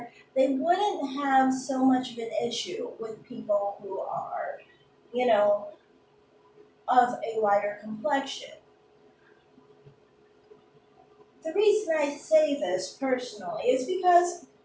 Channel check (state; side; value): identical; both; correlation 1.00